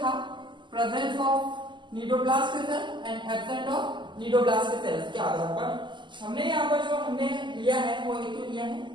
presence of cnidoblast cell and absent of cnidoblast cells के आधार पर हमने यहाँ पर जो हमने लिया है वो एक तो लिया है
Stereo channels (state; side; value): late; left; 0.22 ms